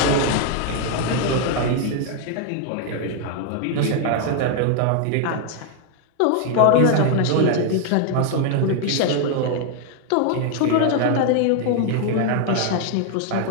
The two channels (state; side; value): different; both; correlation 0.00